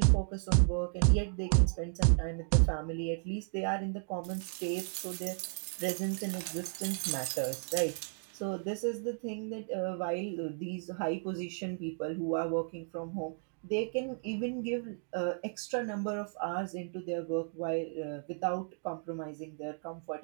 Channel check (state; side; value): silent; left; 55 dB below the other